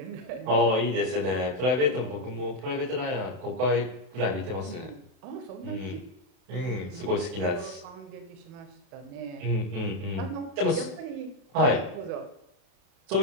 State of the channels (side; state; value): left; late; 32 ms